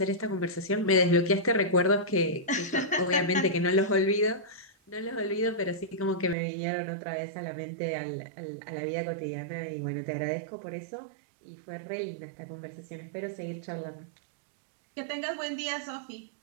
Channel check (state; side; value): drops out; left; at 6.4 s